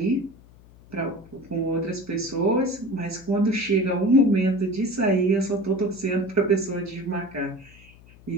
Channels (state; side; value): noise; left; hum, 24 dB below the sound